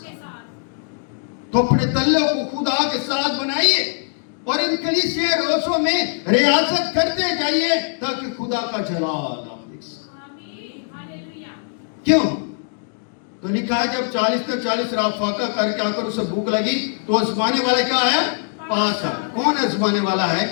तो अपने तल्लक को खुदा के साथ बनाइए और इन कलीसिया रोज़ों में रियाजत करते जाइए ताकि खुदा का जलाल आप देख सकें। क्यों? तो लिखा है जब 40 तक 40 रात फाका करके आकर उसे भूख लगी तो आजमाने वाला क्या है? पास है। कौन आजमाने वाला है?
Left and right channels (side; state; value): right; silent; digital silence